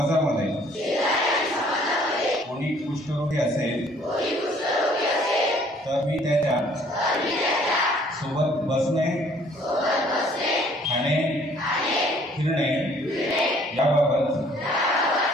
कोणी कुष्ठरोगी असेल तर मी त्याच्या सोबत बसणे, खाणे, फिरणे याबाबत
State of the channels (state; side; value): normal; both; correlation 0.59